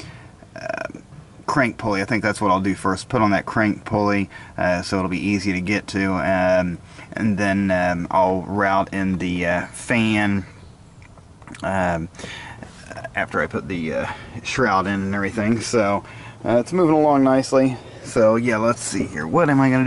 crank pulley. I think that's what I'll do first. Put on that crank pulley so it'll be easy to get to, and then I'll route in the fan after I put the shroud in and everything. So it's moving along nicely. So yeah, let's see here. What am I going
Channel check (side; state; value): both; identical; correlation 1.00